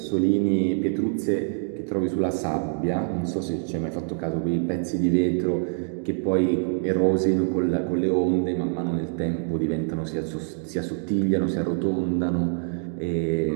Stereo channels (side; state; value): left; silent; digital silence